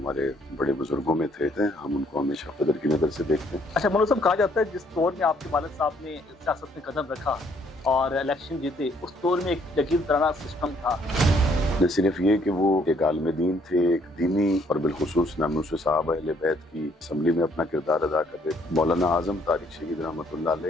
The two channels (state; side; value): normal; both; correlation 0.66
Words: बड़े बुजुर्गों में थे। हम उनको हमेशा कदर की नज़र से देखते हैं। अच्छा मनोज साहब, कहा जाता है जिस दौर में आपके वालिद साहब ने सियासत में कदम रखा और इलेक्शन जीते, उस दौर में एक यकीन तराना सिस्टम था। न सिर्फ ये कि वो एक आलिम दीन थे, एक दीनी और बिलखुसूस नामूस साहब अहले बैत की असम्बली में अपना किरदार अदा कर रहे थे। मौलाना आजम तारिक शहीद रहमतुल्लाह